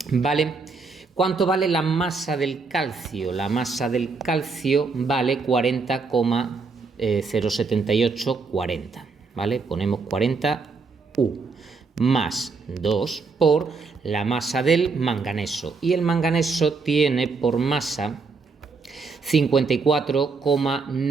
¿Vale? ¿Cuánto vale la masa del calcio? La masa del calcio vale 40,07840, ¿vale? Ponemos 40 U más 2 por la masa del manganeso. Y el manganeso tiene por masa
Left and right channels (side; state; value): left; quieter; 4.4 dB